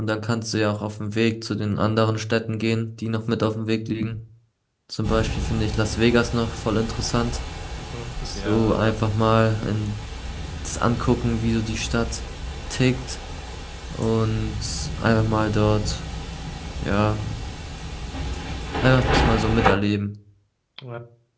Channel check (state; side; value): identical; both; correlation 1.00